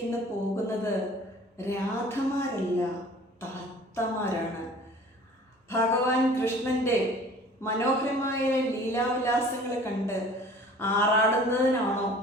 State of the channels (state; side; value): normal; both; correlation 0.48